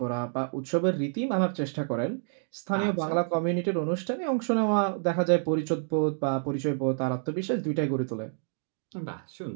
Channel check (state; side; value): silent; left; digital silence